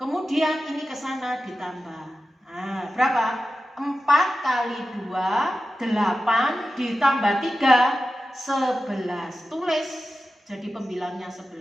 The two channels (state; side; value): normal; both; correlation 0.93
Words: Kemudian ini ke sana ditambah. Nah, berapa? 4 kali 2, 8 ditambah 3, 11. Tulis, jadi pembilangnya